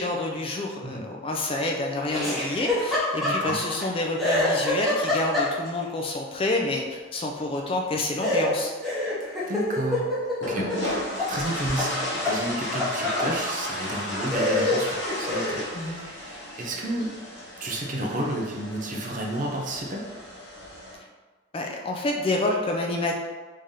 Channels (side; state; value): both; normal; correlation 0.25